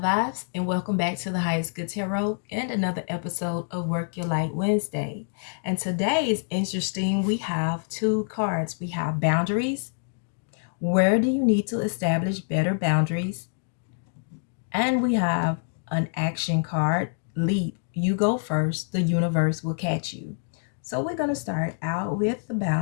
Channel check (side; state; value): right; silent; digital silence